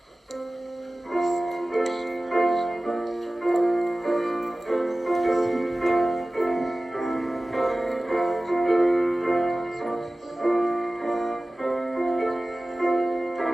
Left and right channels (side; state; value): both; normal; correlation 0.97